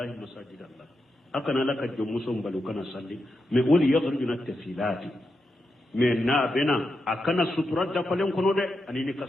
masajid allah akana laka jomuso mbalu kana salli me woli yakhrujuna tafilati me na bena akana sutura da falen kono de anini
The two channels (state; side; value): normal; both; correlation 0.86